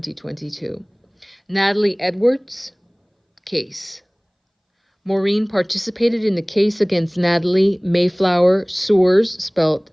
Natalie Edwards case. Maureen participated in the case against Natalie Mayflower Sours, spelled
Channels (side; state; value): both; identical; correlation 1.00